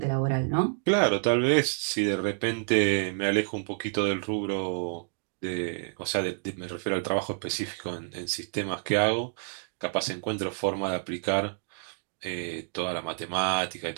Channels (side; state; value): left; silent; digital silence